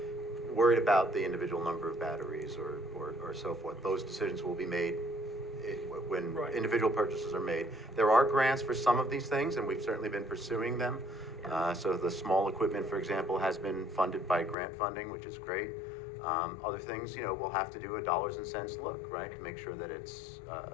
worried about the individual number of batteries or so forth. Those decisions will be made when Right. individual purchases are made. There are grants for some of these things, and we've certainly been pursuing them. So the small equipment, for example, has been funded by grant funding, which is great. Other things, we'll have to do a dollars and cents look, right, to make sure that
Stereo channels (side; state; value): right; drops out; at 14.6 s